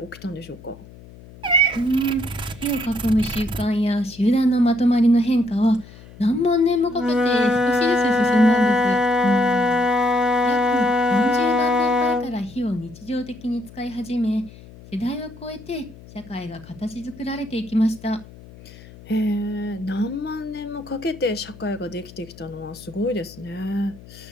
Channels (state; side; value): noise; left; hum, 19 dB below the sound